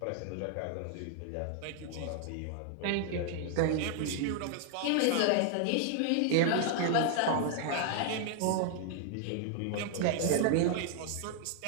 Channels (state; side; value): different; both; correlation 0.00